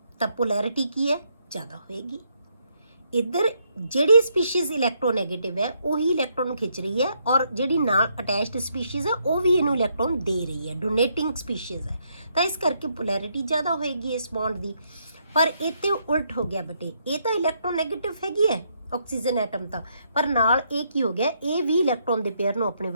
ਤਾਂ ਪੋਲੈਰਿਟੀ ਕੀ ਹੈ, ਜ਼ਿਆਦਾ ਹੋਏਗੀ। ਇੱਧਰ ਜਿਹੜੀ ਸਪੀਸ਼ੀਜ਼ ਇਲੈਕਟ੍ਰੋਨੈਗੇਟਿਵ ਹੈ ਉਹੀ ਇਲੈਕਟ੍ਰੋਨ ਖਿੱਚ ਰਹੀ ਹੈ, ਔਰ ਜਿਹੜੀ ਨਾਲ ਅਟੈਚਡ ਸਪੀਸ਼ੀਜ਼ ਹੈ ਉਹ ਵੀ ਇਹਨੂੰ ਇਲੈਕਟ੍ਰੋਨ ਦੇ ਰਹੀ ਹੈ, ਡੋਨੇਟਿੰਗ ਸਪੀਸ਼ੀਜ਼ ਹੈ। ਤਾਂ ਇਸ ਕਰਕੇ ਪੋਲੈਰਿਟੀ ਜ਼ਿਆਦਾ ਹੋਏਗੀ ਇਸ ਬੌਂਡ ਦੀ। ਪਰ ਇਹ ਤੇ ਉਲਟ ਹੋ ਗਿਆ ਬੇਟੇ, ਇਹ ਤਾਂ ਇਲੈਕਟ੍ਰੋਨੈਗੇਟਿਵ ਹੈਗੀ ਹੈ ਆਕਸੀਜਨ ਐਟਮ ਤਾਂ, ਪਰ ਨਾਲ ਇਹ ਕੀ ਹੋ ਗਿਆ, ਇਹ ਵੀ ਇਲੈਕਟ੍ਰੋਨ ਦੇ ਪੇਅਰ ਨੂੰ ਆਪਣੇ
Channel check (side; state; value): both; inverted; correlation -0.75